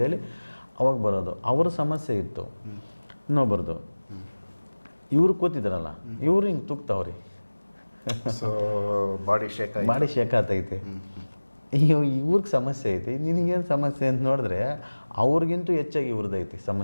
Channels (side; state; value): both; inverted; correlation -1.00